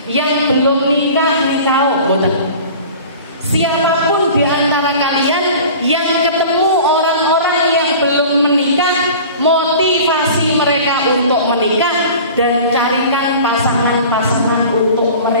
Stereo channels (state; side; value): inverted; both; correlation -0.41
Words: Yang belum nikah, boten. Siapapun di antara kalian yang ketemu orang-orang yang belum menikah, motivasi mereka untuk menikah dan carikan pasangan-pasangan untuk